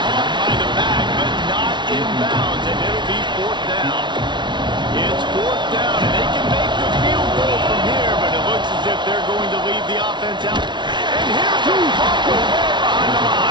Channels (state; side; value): late; left; 0.22 ms